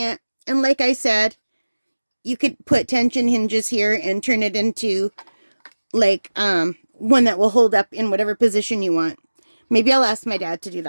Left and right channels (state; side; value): inverted; both; correlation -1.00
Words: And like I said, you could put tension hinges here and turn it into like one that will hold up in whatever position you want. Maybe I'll ask my dad to do